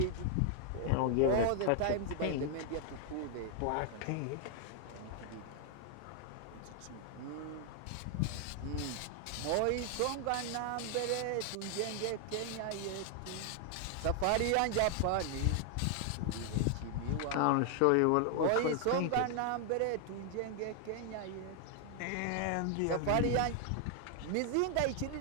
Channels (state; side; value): different; both; correlation 0.00